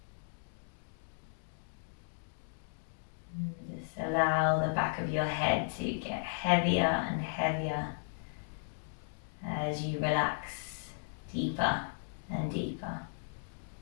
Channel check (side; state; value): right; silent; digital silence